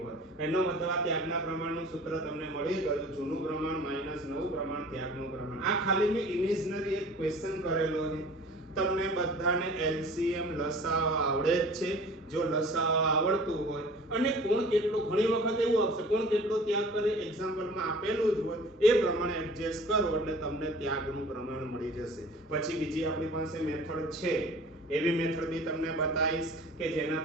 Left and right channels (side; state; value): both; normal; correlation 0.46